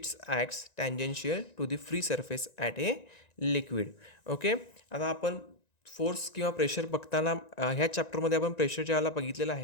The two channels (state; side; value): late; right; 1.9 ms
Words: acts tangential to the free surface at a liquid. Okay, आता आपण फोर्स किंवा प्रेशर बघताना ह्या चॅप्टरमध्ये आपण प्रेशर ज्याला बघितलेलं